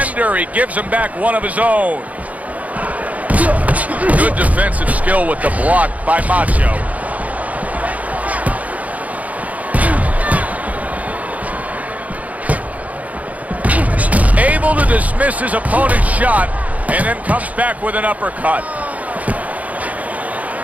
He gives him back one of his own. Good defensive skill with the block by Macho. able to dismiss his opponent's shot and then comes back with an uppercut.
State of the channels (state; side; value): late; left; 0.071 ms